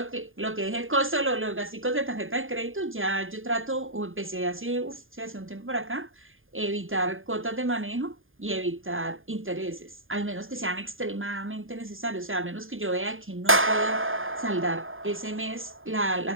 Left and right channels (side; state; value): left; late; 0.59 ms